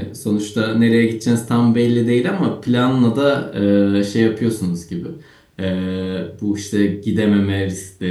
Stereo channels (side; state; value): both; identical; correlation 1.00